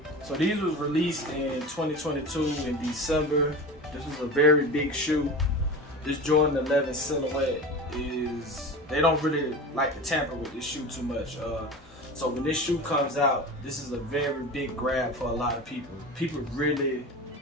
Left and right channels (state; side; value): normal; both; correlation 0.31